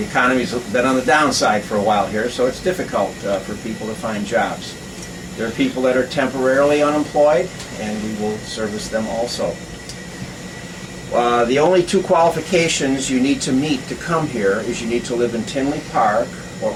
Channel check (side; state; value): both; identical; correlation 1.00